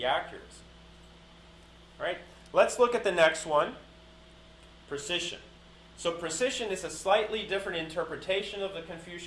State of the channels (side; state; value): both; identical; correlation 1.00